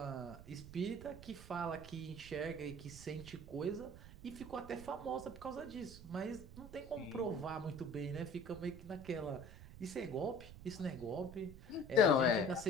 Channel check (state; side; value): noise; right; rumble, 15 dB below the sound